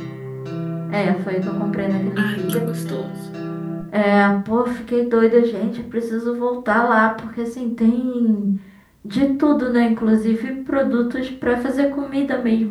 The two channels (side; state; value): both; identical; correlation 1.00